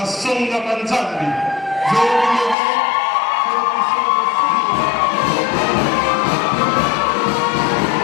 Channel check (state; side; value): drops out; right; at 2.6 s